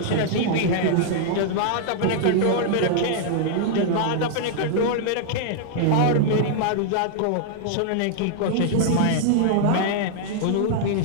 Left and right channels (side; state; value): both; different; correlation -0.01